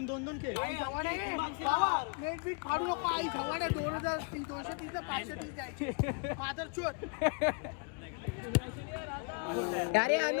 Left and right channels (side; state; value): right; quieter; 34.0 dB